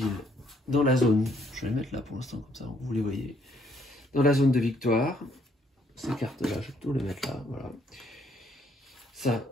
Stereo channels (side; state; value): both; normal; correlation 0.68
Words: dans la zone. Je vais les mettre là pour l'instant, comme ça vous les voyez. Dans la zone de victoire. Ces cartes-là, je vais plutôt les mettre là. Voilà. Ça,